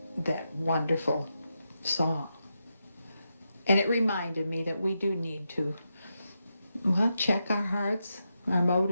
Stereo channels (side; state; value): both; inverted; correlation -0.86